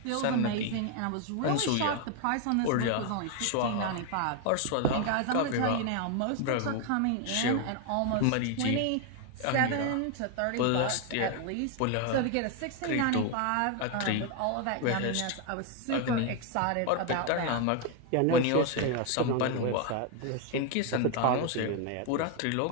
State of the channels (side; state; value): both; different; correlation 0.01